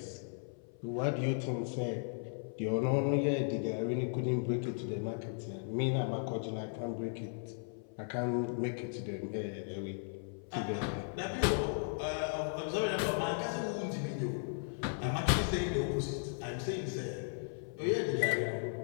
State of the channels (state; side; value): silent; right; 54 dB below the other